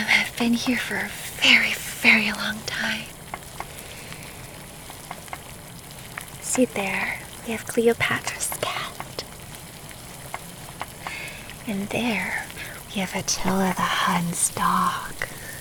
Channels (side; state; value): both; identical; correlation 1.00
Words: have been here for a very, very long time. See there, we have Cleopatra's cat. And there, we have Attila the Hun's dog.